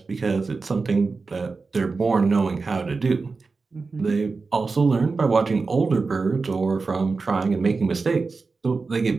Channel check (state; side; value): quieter; left; 4.2 dB